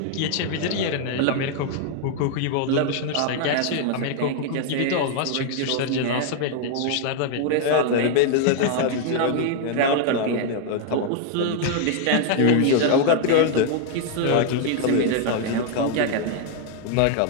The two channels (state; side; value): different; both; correlation 0.00